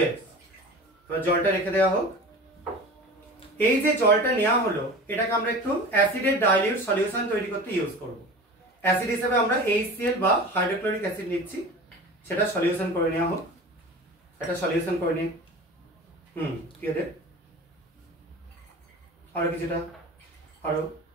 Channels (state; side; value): normal; both; correlation 0.35